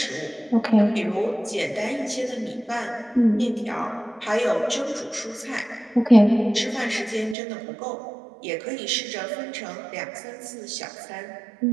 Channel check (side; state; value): left; drops out; at 7.4 s